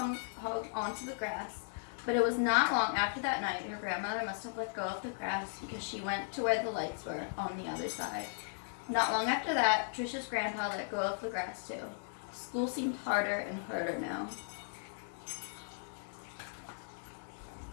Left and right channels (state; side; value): silent; right; digital silence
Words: onto the grass. But it was not long after that night her grandmother must have let go of the grass because she went to where the lights were on the other side. Not long after that, Trisha's grandpa let go of the grass too. School seemed harder and harder now.